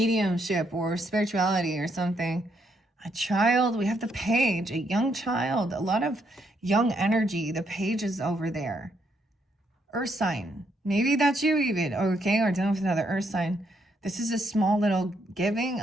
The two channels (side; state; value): both; normal; correlation 0.75